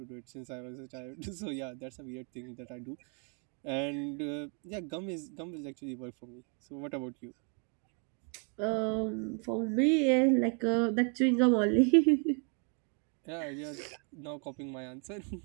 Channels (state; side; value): quieter; left; 38.7 dB